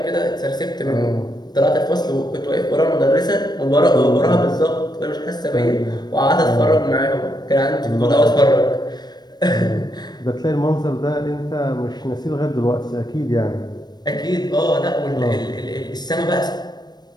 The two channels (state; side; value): late; right; 0.20 ms